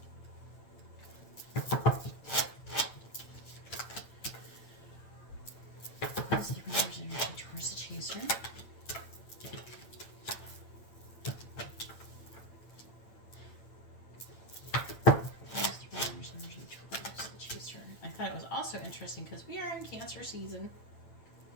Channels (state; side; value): late; right; 8.9 ms